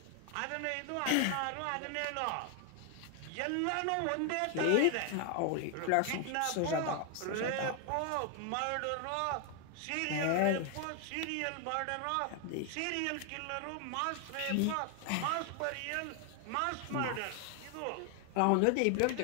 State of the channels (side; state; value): both; different; correlation 0.01